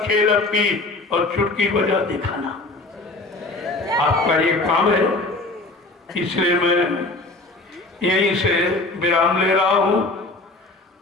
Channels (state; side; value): quieter; right; 3.0 dB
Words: अपनी और चुटकी बजा दिखाना, आपका ये काम है। इसलिए मैं यहीं से विराम ले रहा हूं